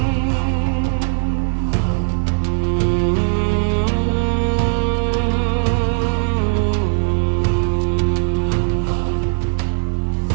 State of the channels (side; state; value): left; silent; 62 dB below the other